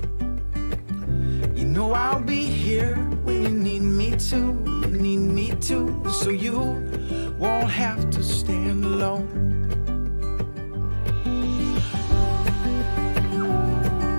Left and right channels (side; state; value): both; inverted; correlation -1.00